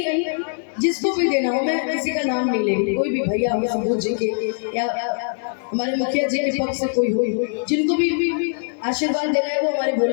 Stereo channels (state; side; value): silent; right; 64 dB below the other